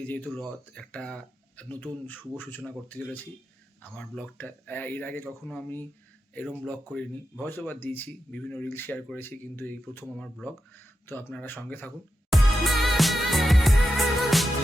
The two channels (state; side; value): normal; both; correlation 0.89